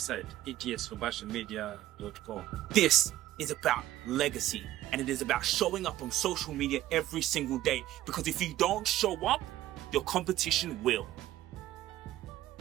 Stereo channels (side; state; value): left; quieter; 14.4 dB